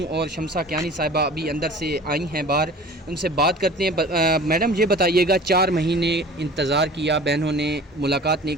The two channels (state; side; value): normal; both; correlation 0.43